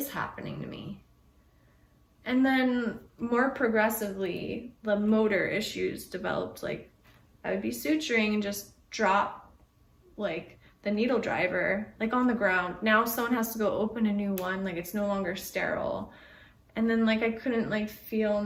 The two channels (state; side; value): identical; both; correlation 1.00